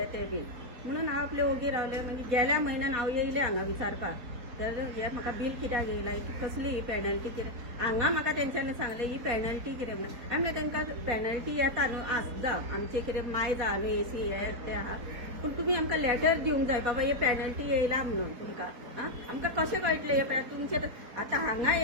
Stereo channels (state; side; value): late; left; 4.1 ms